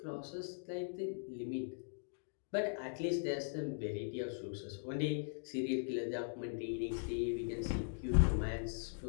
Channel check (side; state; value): right; silent; digital silence